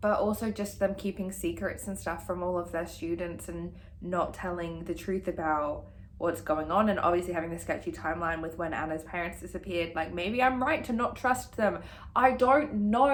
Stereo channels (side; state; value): both; identical; correlation 1.00